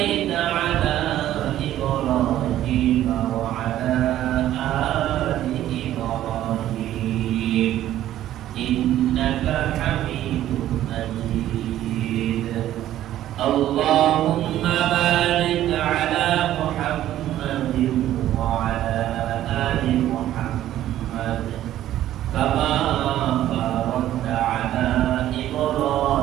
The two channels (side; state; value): left; quieter; 12.9 dB